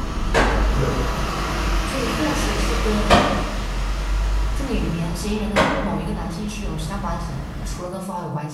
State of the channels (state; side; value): identical; both; correlation 1.00